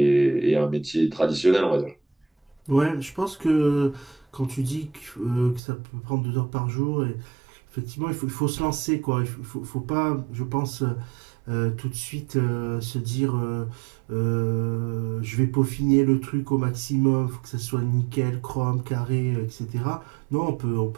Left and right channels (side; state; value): left; drops out; at 5.6 s